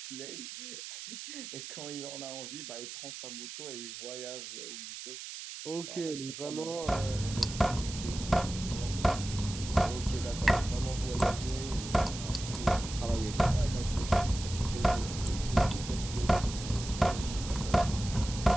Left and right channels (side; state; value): right; noise; hiss, 10 dB below the sound